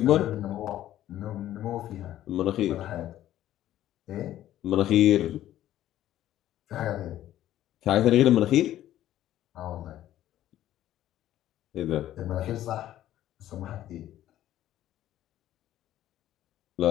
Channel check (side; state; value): right; quieter; 12.9 dB